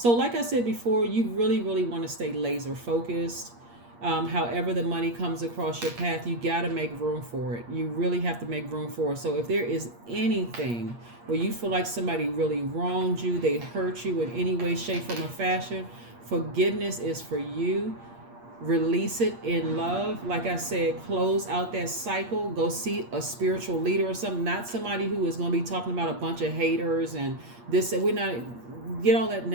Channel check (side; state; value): left; late; 8.5 ms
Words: like I said before, you really, really want to stay laser focused. However the money comes across your path, you got to make room for it. You really have to make room for it. So if there is anything where you feel like somebody really wronged you, they hurt you in any way, shape, form, or fashion, forgiveness is for you. Release it in love. Like I said, close out that cycle. Go see a spiritual leader or something. Not somebody who is going to be talking about a bunch of haters and this. We're not, get all that